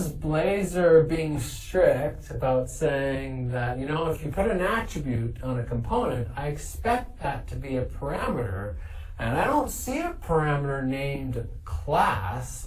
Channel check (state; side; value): identical; both; correlation 1.00